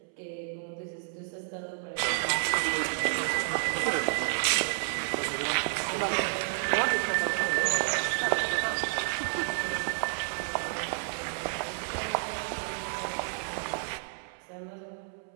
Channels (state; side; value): silent; left; 57 dB below the other